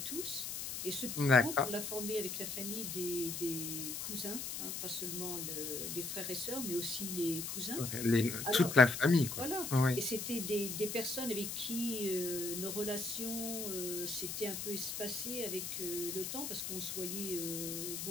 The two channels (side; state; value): left; noise; hiss, 5 dB below the sound